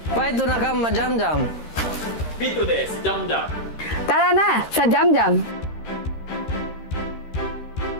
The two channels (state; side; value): late; right; 13 ms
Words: Paito na ka ma-Jam-Jam. Pito des, Jam-Jam. Tara na sa Jam Jam.